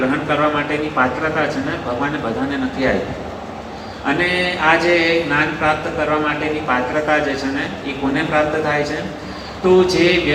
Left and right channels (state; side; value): identical; both; correlation 1.00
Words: કરવા માટેની પાત્રતા છે ને ભગવાને બધાને નથી આપી. અને આ જે જ્ઞાન પ્રાપ્ત કરવા માટેની પાત્રતા જે છે ને એ કોને પ્રાપ્ત થાય છે? તો જે